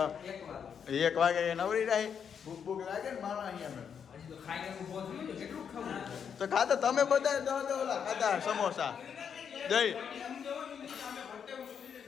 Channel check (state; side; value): quieter; right; 7.4 dB